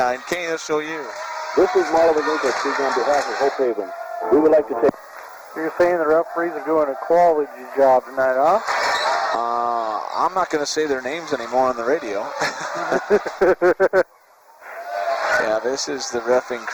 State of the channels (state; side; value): identical; both; correlation 1.00